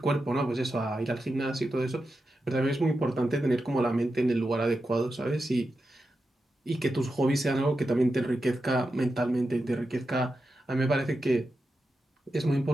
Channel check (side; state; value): both; normal; correlation 0.89